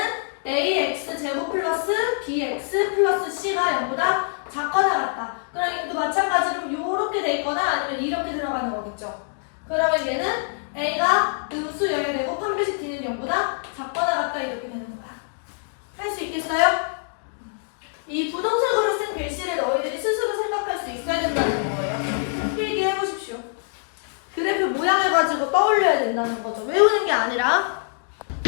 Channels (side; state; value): right; silent; digital silence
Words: ax 제곱 플러스 bx 플러스 c가 0보다 작거나 같다. 그럼 이것도 마찬가지로 이렇게 돼 있거나 아니면 이렇게 들어가는 거겠죠. 그러면 얘는 a가 음수여야 되고 판별식 d는 0보다 작거나 같다 이렇게 되는 거야. 할 수 있겠어요? 이 부동식으로 쓴 글씨를 너희들이 스스로 생각할 수 있어야 된다는 거예요. 필기해 보십시오. 그래프 모양을 가지고 떠올려야 된다는 거죠. 외우는 게 아니라.